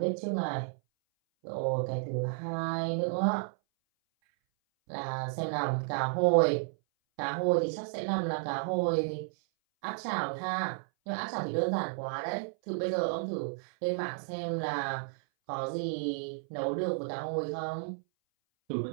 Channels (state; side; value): silent; left; 56 dB below the other